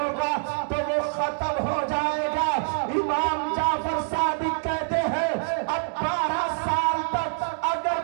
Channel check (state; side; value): silent; left; digital silence